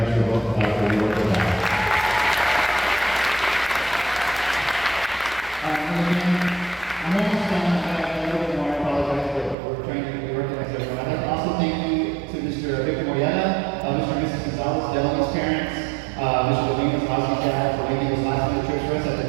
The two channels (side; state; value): left; drops out; at 9.6 s